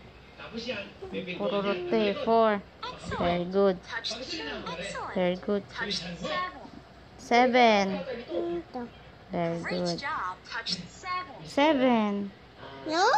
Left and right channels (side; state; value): both; identical; correlation 1.00